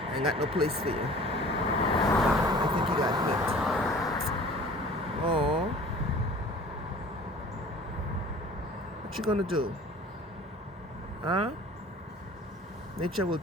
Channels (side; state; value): both; normal; correlation 0.46